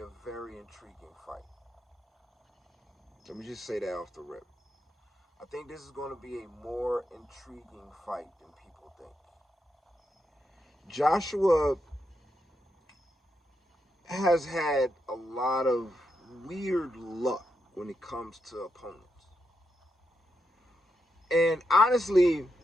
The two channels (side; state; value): both; normal; correlation 0.83